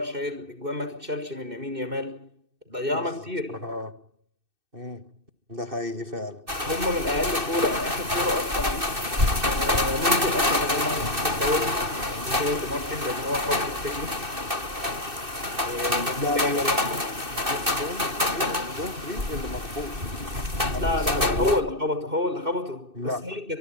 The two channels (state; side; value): late; left; 2.6 ms